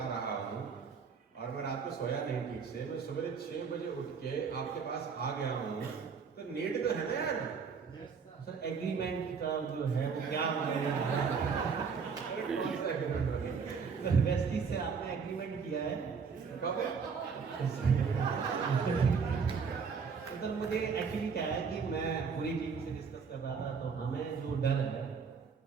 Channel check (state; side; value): quieter; left; 5.8 dB